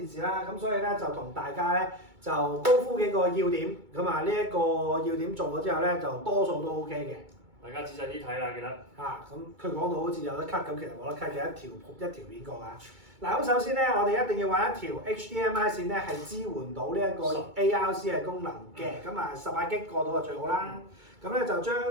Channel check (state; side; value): late; left; 2.2 ms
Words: 視啦，咁所以咧就同大家咧就高呼幾個要點，咁啊呢一個要點做咗之後咧，就多數都 OK 嘅。大家仔細啲睇啦，記得。咁佢講到好似有得 cut 咁，其實冇得 cut 嘅一條片過啊。嗱，咁首先咧，我哋一定要揾一條 HDMI 線咧係支援到呢一個 ARC 嘅功能嘅，咁啊18G 過到就最好啦。咁咧就